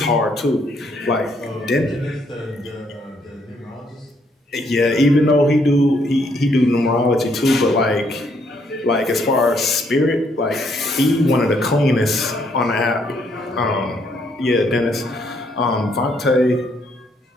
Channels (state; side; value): normal; both; correlation 0.70